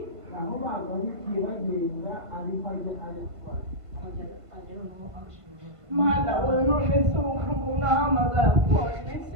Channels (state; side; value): late; left; 1.5 ms